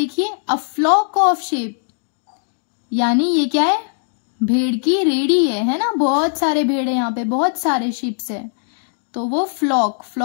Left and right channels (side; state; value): right; silent; digital silence